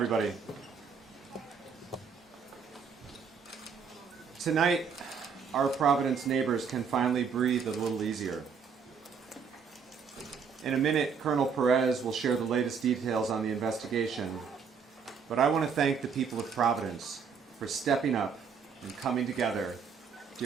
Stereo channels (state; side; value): quieter; left; 6.1 dB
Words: Tonight, our Providence neighbors can finally breathe a little easier. In a minute, Colonel Perez will share the latest details on the investigation, but I want to thank the people of Providence for stepping up and coming together